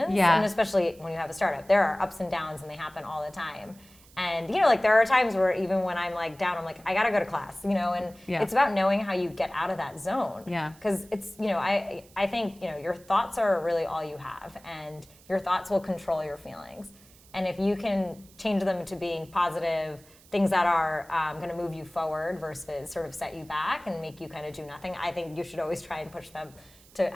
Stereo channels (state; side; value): noise; right; hiss, 25 dB below the sound